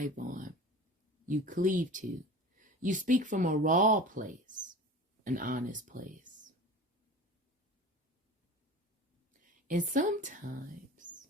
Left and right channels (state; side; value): normal; both; correlation 0.37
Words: on. You cleave to. You speak from a raw place, an honest place. And sometimes